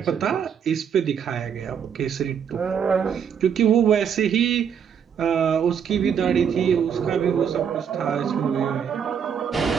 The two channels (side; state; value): left; quieter; 7.7 dB